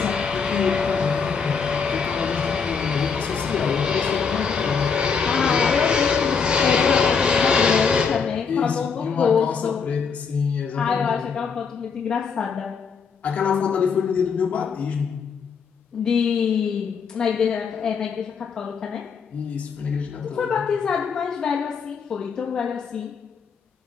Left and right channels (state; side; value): quieter; right; 5.9 dB